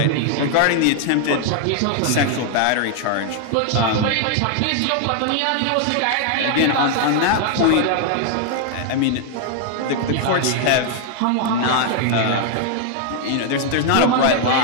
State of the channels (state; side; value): different; both; correlation 0.00